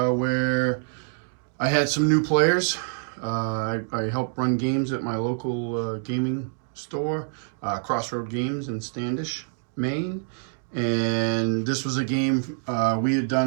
I had some new players. I help run games at my local gaming store, Crossroad Games in Standish, Maine. And this was a game we had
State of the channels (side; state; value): left; silent; digital silence